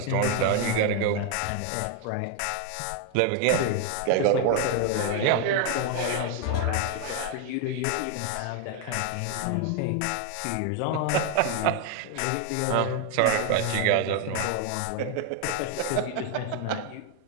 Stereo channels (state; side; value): different; both; correlation 0.01